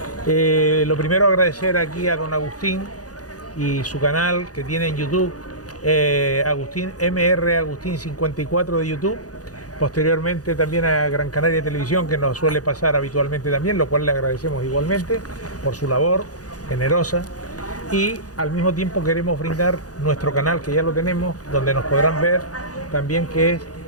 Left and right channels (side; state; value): right; late; 0.68 ms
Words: Lo primero, agradecer aquí a don Agustín y su canal que tiene en YouTube, Agustín Agustín 54 de YouTube, posteriormente también a Gran Canaria Televisión, que nos suele pasar habitualmente también, lo cual le agradecemos igualmente por su labor generosa, y al mismo tiempo queremos brindar nuestro canal, que ya lo tenemos, donde nos podrán ver también, que es